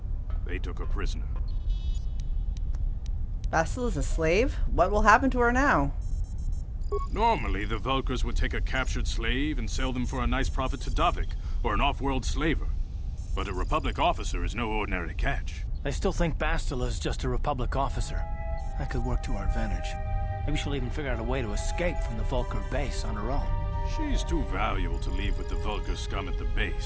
They took her prisoner. Bastil is a slave? What will happen to her now? Normally, the Vulkars would take a captured slave and sell them for a nice profit to Davik, or an off-world slaver. But a Republic officer is no ordinary catch. They still think Bastila is just a Republic officer. That could work to our advantage. Maybe she'll even figure out a way to escape from the Vulkar base on her own. She's too valuable to leave with the Vulkar scum at the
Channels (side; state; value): both; identical; correlation 1.00